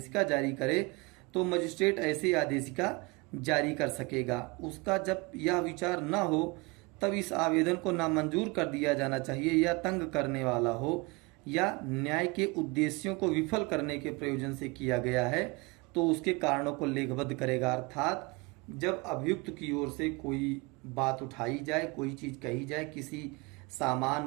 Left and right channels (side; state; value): left; quieter; 26.6 dB